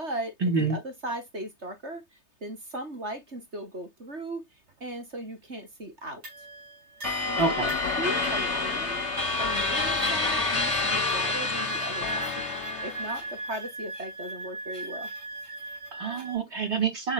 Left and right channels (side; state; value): left; late; 3.3 ms